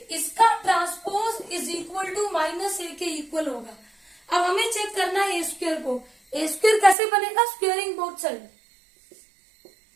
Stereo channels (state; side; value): drops out; left; at 7.0 s